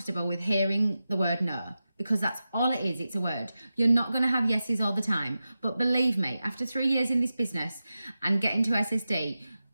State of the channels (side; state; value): both; inverted; correlation -0.93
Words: with hearing the word no, because that's all it is. It's a word. You're not going to have yeses all the time. But believe me, after 3 years in this business and getting to SSD,